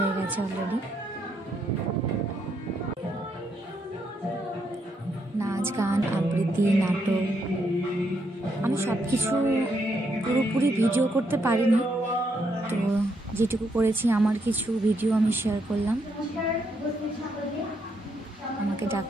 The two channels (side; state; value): both; normal; correlation 0.77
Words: গেছে অলরেডি। নাচ, গান, আবৃত্তি, নাটক, আমি সব কিছু পুরোপুরি ভিডিও করতে পারিনি, তো যেটুকু করেছি আমার কিছু ভিডিও আমি শেয়ার করলাম। আমাকে